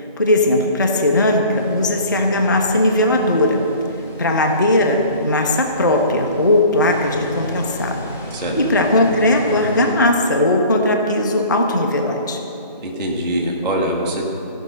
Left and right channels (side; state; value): both; inverted; correlation -0.44